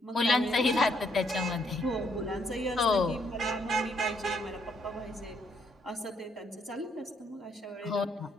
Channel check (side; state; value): both; normal; correlation 0.71